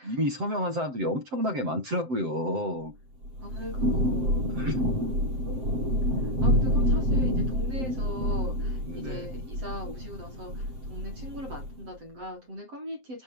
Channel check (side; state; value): left; late; 7.7 ms